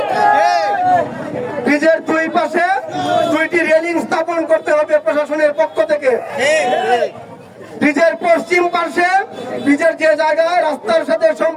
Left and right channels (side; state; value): both; identical; correlation 1.00